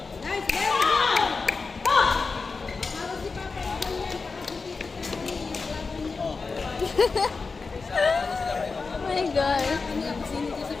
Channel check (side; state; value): right; quieter; 4.4 dB